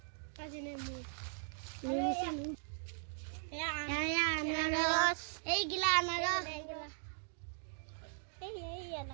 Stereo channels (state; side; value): silent; left; digital silence